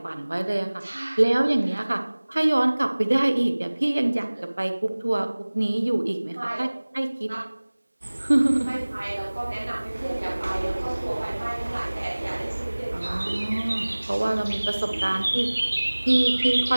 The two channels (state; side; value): inverted; both; correlation -1.00